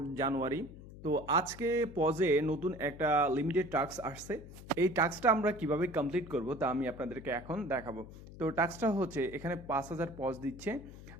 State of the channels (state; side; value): noise; left; hum, 16 dB below the sound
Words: জানুয়ারি। তো আজকে পজে নতুন একটা লিমিটেড টাস্ক আসছে। এই টাস্কটা আমরা কিভাবে কমপ্লিট করব তা আমি আপনাদেরকে এখন দেখাবো। তো টাস্কটা হচ্ছে এখানে 5,000 পজ দিচ্ছে।